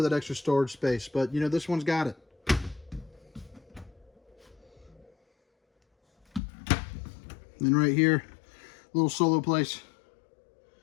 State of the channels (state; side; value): drops out; right; at 6.4 s